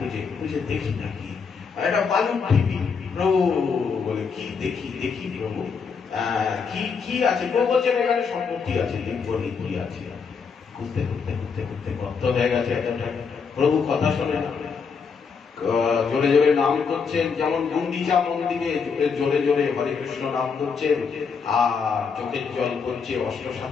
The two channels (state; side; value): quieter; right; 5.7 dB